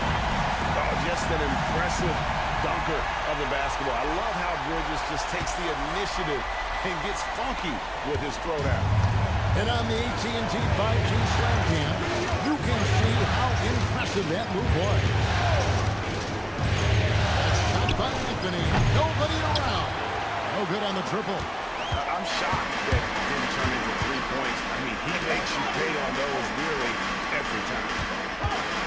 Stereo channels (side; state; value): both; identical; correlation 1.00